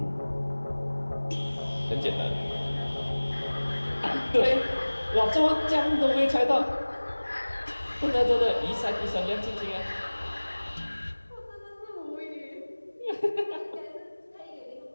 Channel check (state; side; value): inverted; both; correlation -1.00